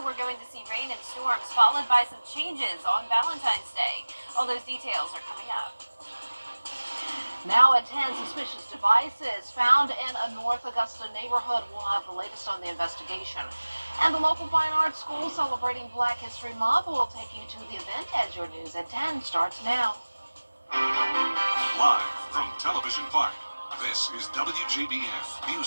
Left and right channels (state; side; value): inverted; both; correlation -1.00